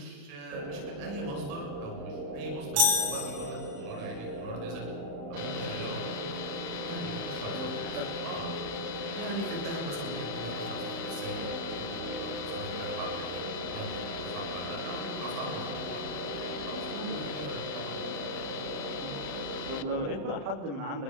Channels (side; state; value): left; late; 35 ms